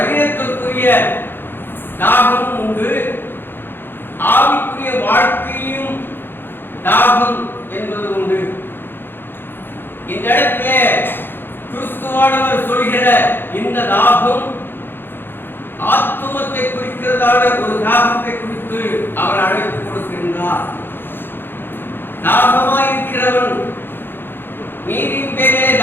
தாகம் உண்டு, ஆவிக்குரிய வாழ்க்கையும் தாகம் என்பது உண்டு. இந்த இடத்திலே கிறிஸ்துவானவர் சொல்கிற இந்த தாகம் ஆத்துமத்தை குறிக்கிறதான ஒரு தாகத்தை குறித்து அவர் அழைப்பு கொடுக்கின்றார். தாகமாயிருக்கிறவன், நீரின் பேரே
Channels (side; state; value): right; late; 0.10 ms